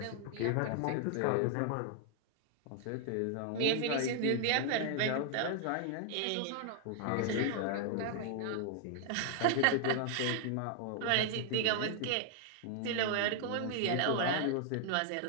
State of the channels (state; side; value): different; both; correlation 0.00